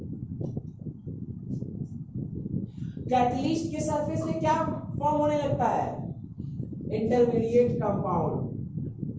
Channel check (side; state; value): both; identical; correlation 1.00